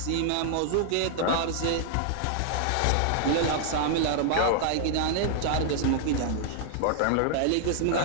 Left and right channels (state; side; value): different; both; correlation -0.01